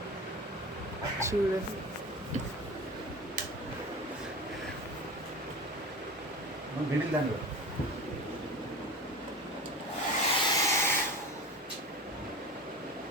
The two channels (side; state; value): both; normal; correlation 0.32